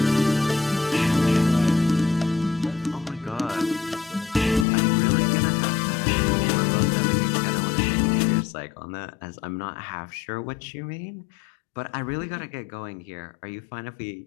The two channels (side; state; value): right; drops out; at 4.7 s